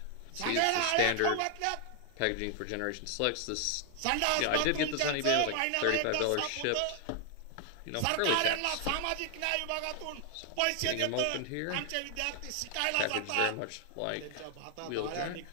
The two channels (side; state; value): both; different; correlation 0.00